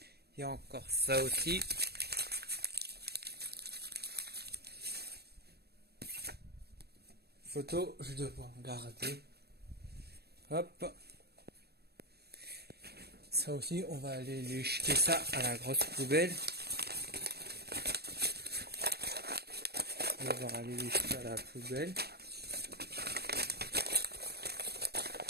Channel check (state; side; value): late; left; 0.47 ms